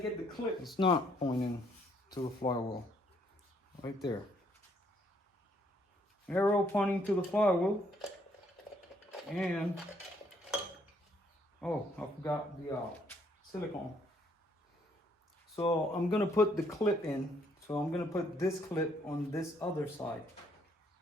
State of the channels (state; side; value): normal; both; correlation 0.69